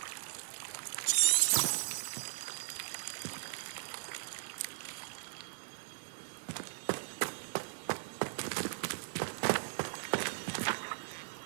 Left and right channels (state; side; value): silent; left; digital silence